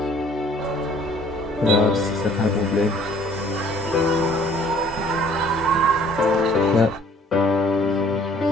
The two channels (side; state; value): both; normal; correlation 0.57